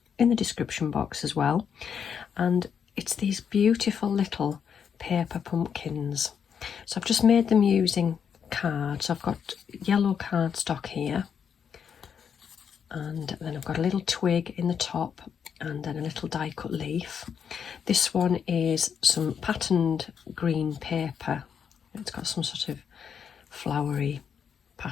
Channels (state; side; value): quieter; right; 7.4 dB